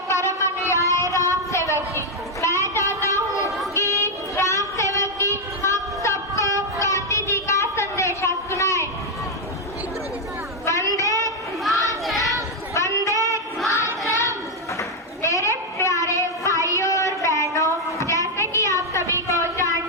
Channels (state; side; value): normal; both; correlation 0.01